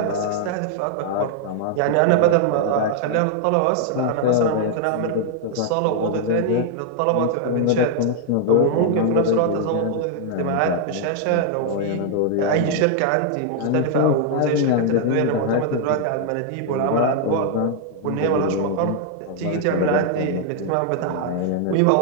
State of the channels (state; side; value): different; both; correlation -0.01